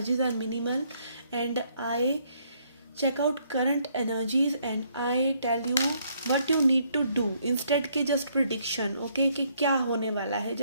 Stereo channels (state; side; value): inverted; both; correlation -0.69